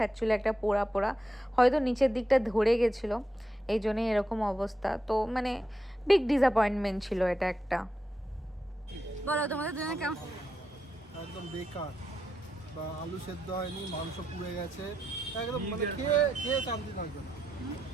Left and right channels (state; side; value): normal; both; correlation 0.85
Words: একটা পোড়া পোড়া, হয়তো নিচের দিকটা ধরে গেছিলো, এই জন্যই এরকম অবস্থা। তো মানে বিগ ডিসঅ্যাপয়েন্টমেন্ট ছিল এটা একটা। বলো তোমাদের দুজনে কেমন? একদম বেকার। বা আলু সেদ্ধ হয়নি, মাংস পুড়ে গেছে, একদম মানে খেয়ে খেয়ে শান্তি থাকবে না।